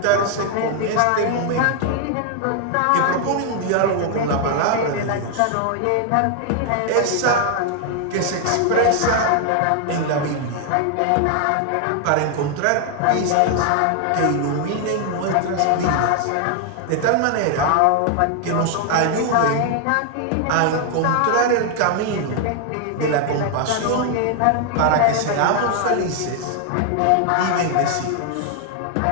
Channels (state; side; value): different; both; correlation 0.00